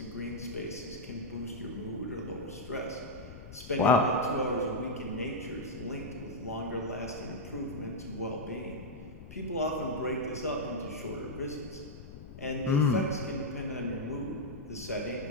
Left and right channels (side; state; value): left; noise; rumble, 13 dB below the sound